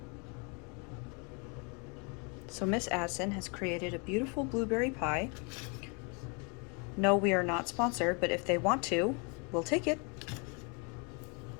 So Miss Addison has created a beautiful blueberry pie. No, we are not sponsored, but if they want to, we'll take it.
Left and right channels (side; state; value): right; quieter; 34.1 dB